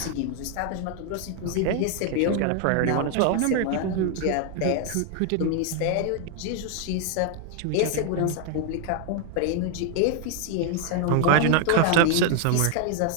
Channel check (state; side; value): different; both; correlation 0.00